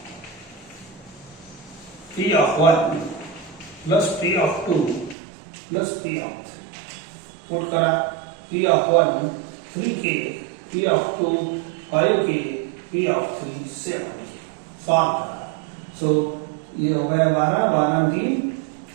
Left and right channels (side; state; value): left; drops out; at 5.2 s